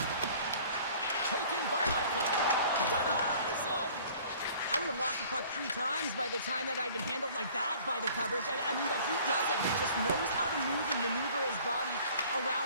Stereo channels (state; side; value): inverted; both; correlation -0.51